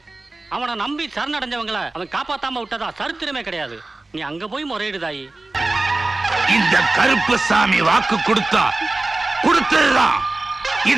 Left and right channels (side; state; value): left; quieter; 3.1 dB